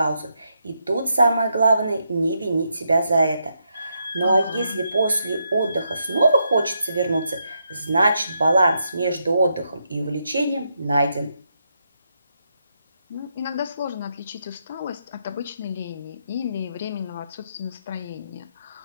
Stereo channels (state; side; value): inverted; both; correlation -0.81